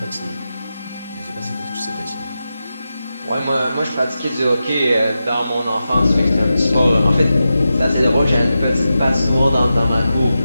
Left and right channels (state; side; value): inverted; both; correlation -0.91